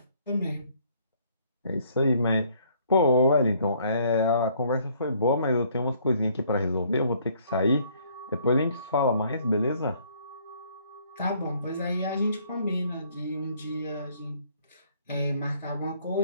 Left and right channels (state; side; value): inverted; both; correlation -0.63